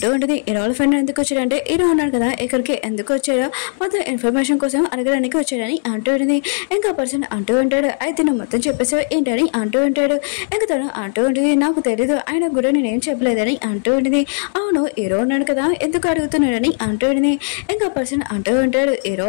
ఉంటుంది, హీరో ఫ్రెండ్ ఎందుకు వచ్చాడంటే హీరో ఉన్నాడు కదా ఇక్కడికి ఎందుకు వచ్చాడో మొత్తం ఇన్ఫర్మేషన్ కోసం అడగడానికి వచ్చాడని అంటూ ఉంటుంది. ఇంకా పర్సన్ అంటూ ఉంటాడు, అయితే నువ్వు మొత్తం చెప్పేసావు ఏంటని అంటూ ఉంటాడు. ఇంకా తను అంటూ ఉంటుంది, నాకు తెలీదు, ఆయన కూడా నేనేం చెప్పలేదని అంటూ ఉంటుంది. అవును హీరో ఉన్నాడు కదా ఎందుకు అడుగుతున్నాడని అంటూ ఉంటుంది. ఇంకా పర్సన్ అంటూ ఉంటాడు, హీరో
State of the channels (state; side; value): silent; right; digital silence